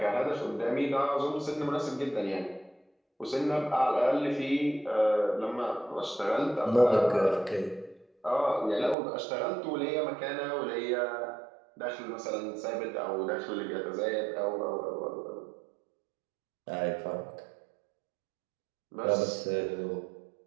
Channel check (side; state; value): left; drops out; at 9.0 s